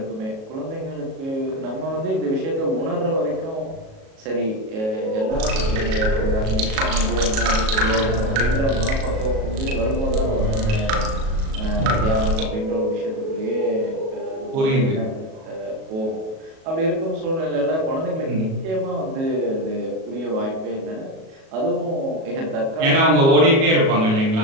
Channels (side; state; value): left; late; 37 ms